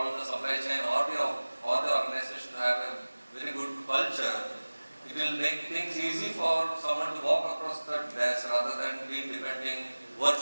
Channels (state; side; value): inverted; both; correlation -1.00